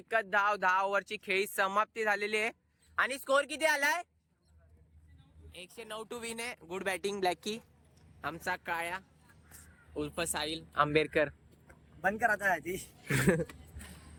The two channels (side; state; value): both; identical; correlation 1.00